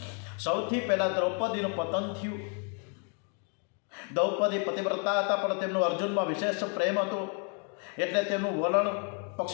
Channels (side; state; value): right; quieter; 37.9 dB